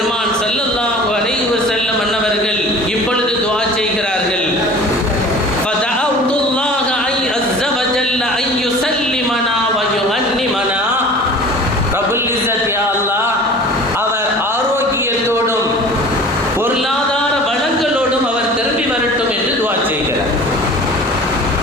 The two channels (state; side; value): normal; both; correlation 0.42